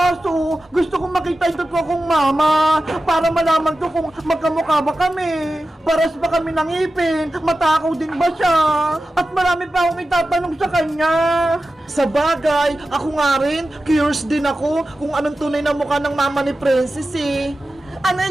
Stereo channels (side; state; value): both; normal; correlation 0.93